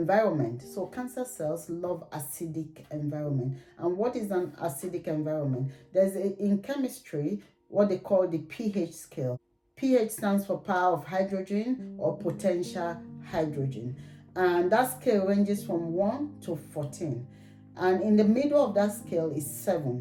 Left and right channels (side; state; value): both; identical; correlation 1.00